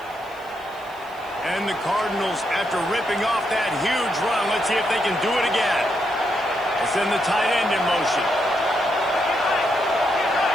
And the Cardinals, after ripping off that huge run, let's see if they can do it again. They send the tight end in motion.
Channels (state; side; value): noise; right; hiss, 26 dB below the sound